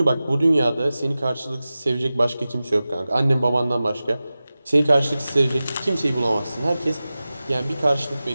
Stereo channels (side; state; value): both; inverted; correlation -0.95